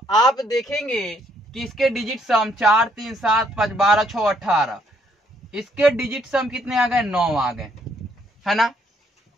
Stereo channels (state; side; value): normal; both; correlation 0.69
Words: आप देखेंगे कि इसके डिजिट सम 4, 3, 7, 5, 12, 6, 18, इसके डिजिट सम कितने आ गए, 9 आ गए, है ना।